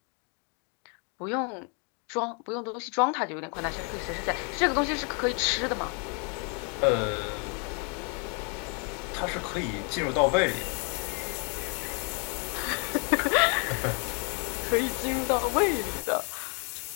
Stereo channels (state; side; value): quieter; right; 36.9 dB